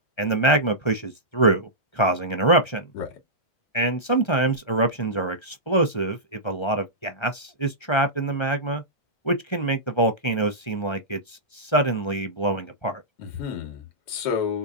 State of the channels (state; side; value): late; right; 1.3 ms